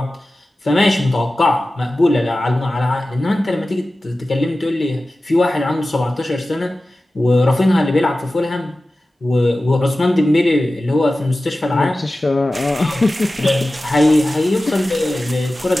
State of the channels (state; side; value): normal; both; correlation 0.95